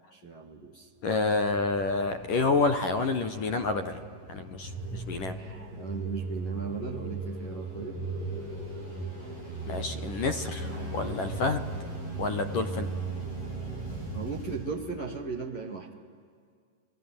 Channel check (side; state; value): right; late; 11 ms